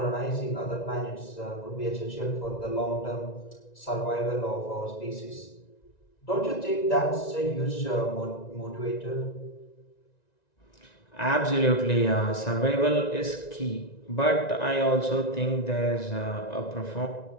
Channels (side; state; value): right; late; 1.9 ms